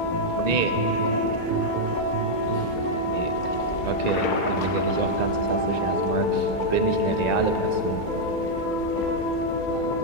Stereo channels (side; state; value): right; late; 2.3 ms